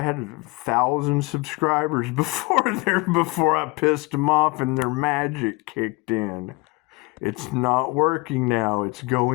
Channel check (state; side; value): quieter; right; 25.8 dB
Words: had 1,000 subscribers before I pissed them off and their magic kicked in. It's not working now. It's